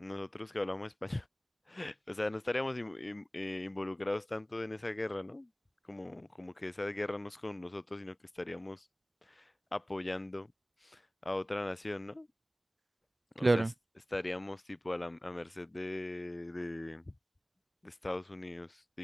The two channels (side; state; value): both; normal; correlation 0.98